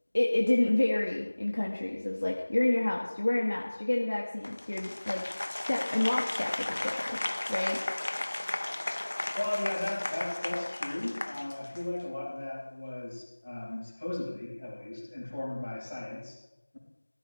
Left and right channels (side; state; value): both; inverted; correlation -1.00